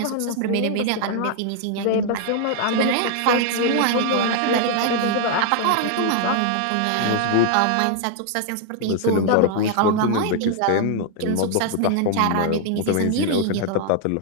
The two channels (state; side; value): different; both; correlation 0.00